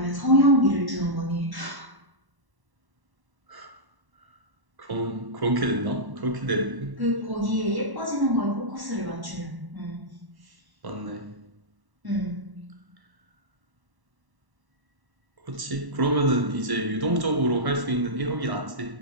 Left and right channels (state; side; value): late; left; 1.1 ms